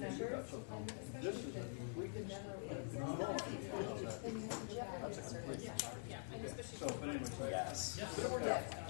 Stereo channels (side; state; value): right; silent; digital silence